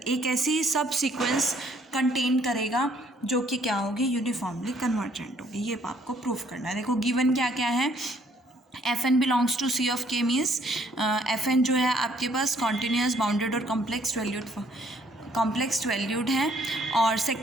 ऐसी सब सीक्वेंस कंटेन करेगा जो कि क्या होगी, यूनिफॉर्मली कन्वर्जेंट होगी। ये आपको प्रूव करना है। देखो गिवन क्या क्या है, f n belongs to C of K means f n जो है आपके पास कॉन्टीन्यूस बाउंडेड और कॉम्प्लेक्स वैल्यूड है। और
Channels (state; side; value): normal; both; correlation 0.64